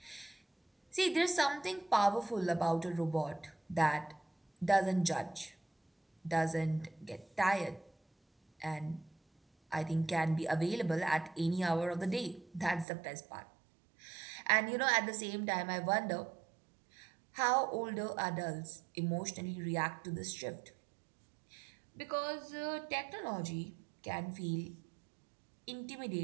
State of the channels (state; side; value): drops out; left; at 12.9 s